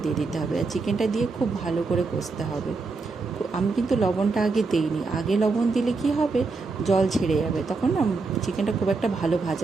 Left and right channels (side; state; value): left; quieter; 4.0 dB